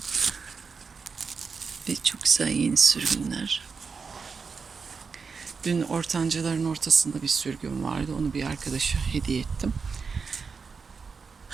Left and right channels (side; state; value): left; quieter; 5.2 dB